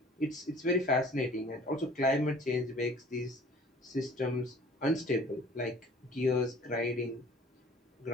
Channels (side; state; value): both; normal; correlation 0.49